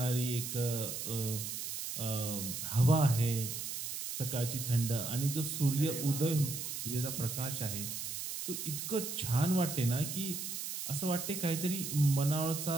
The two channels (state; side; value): noise; right; hiss, 5 dB below the sound